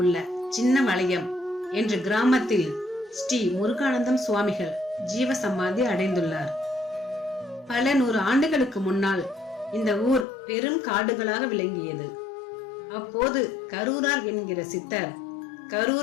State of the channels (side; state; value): right; drops out; at 10.2 s